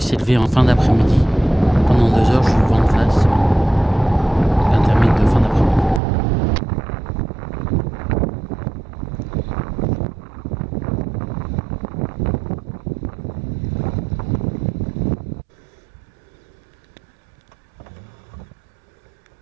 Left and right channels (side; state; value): left; drops out; at 6.0 s